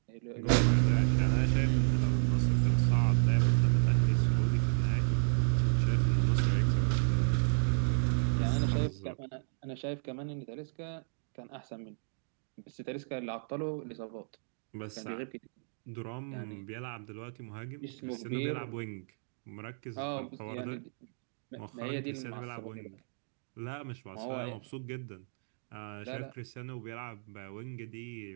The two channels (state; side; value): silent; left; digital silence